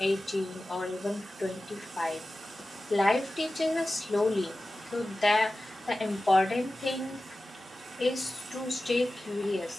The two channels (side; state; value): both; normal; correlation 0.95